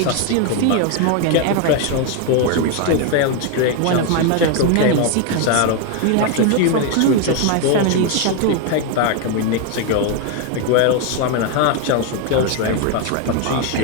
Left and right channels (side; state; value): both; different; correlation 0.01